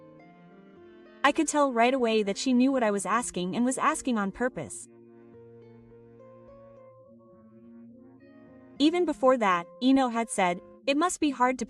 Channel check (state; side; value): identical; both; correlation 1.00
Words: I could tell right away that she knew what I was asking and was asking on purpose. Even before that, Ino had said, "It must be hard to